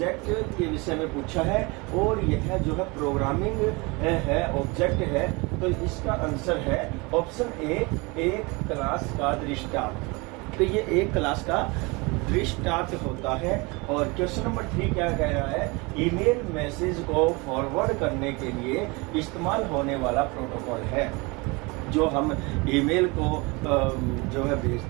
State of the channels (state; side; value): quieter; left; 26.6 dB